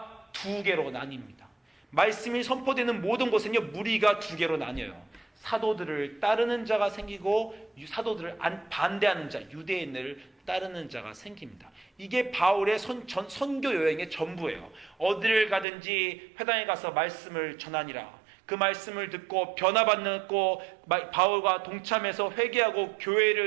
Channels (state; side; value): drops out; left; at 15.7 s